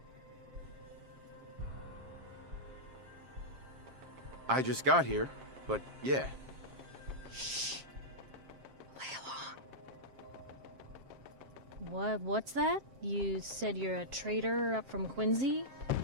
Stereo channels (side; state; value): left; late; 7.5 ms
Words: I just got here, but yeah. Shh. Play along. What's that? You said you're a trader up from Quincy?